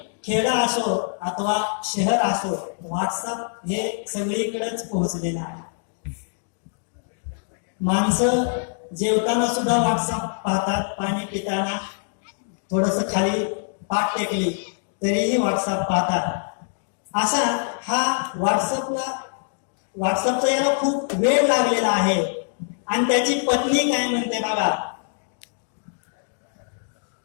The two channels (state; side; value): silent; right; 63 dB below the other